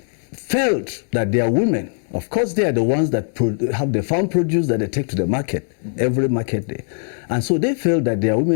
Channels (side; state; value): right; silent; digital silence